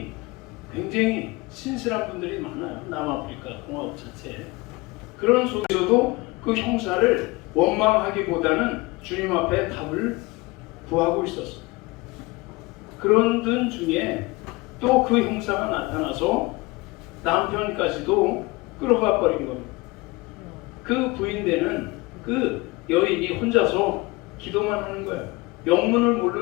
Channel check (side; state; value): right; quieter; 23.4 dB